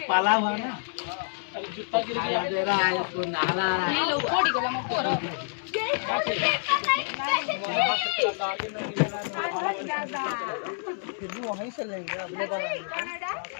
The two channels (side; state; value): right; silent; 60 dB below the other